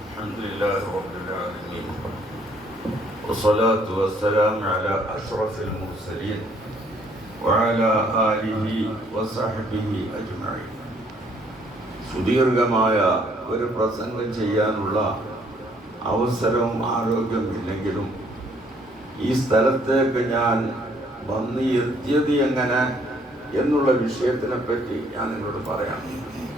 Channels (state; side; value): normal; both; correlation 0.64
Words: الحمد لله رب العالمين والصلاة والسلام على أشرف المرسلين وعلى آله وصحبه أجمعين. സുദീർഘമായ ഒരു പ്രസംഗം ചെയ്യാനുള്ള അവസരവും ആരോഗ്യമില്ലെങ്കിലും ഈ സ്ഥലത്തേക്ക് ഞാൻ വന്ന് എത്തിയത് എങ്ങനെ എന്നുള്ള വിഷയത്തിനെ പറ്റി ഞാൻ നിങ്ങളോട് പറയാം.